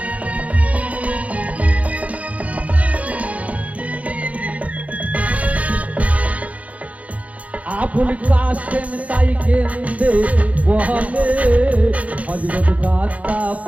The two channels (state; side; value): late; left; 0.067 ms